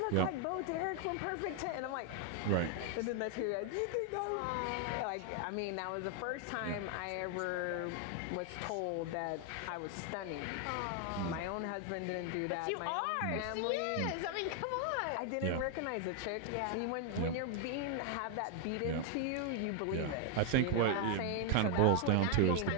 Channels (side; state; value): both; different; correlation 0.00